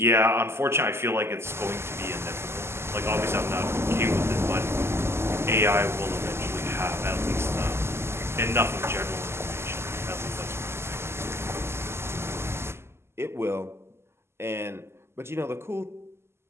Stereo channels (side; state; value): left; late; 0.12 ms